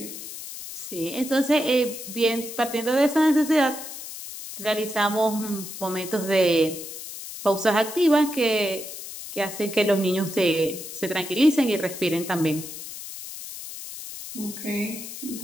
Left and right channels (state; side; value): noise; left; hiss, 10 dB below the sound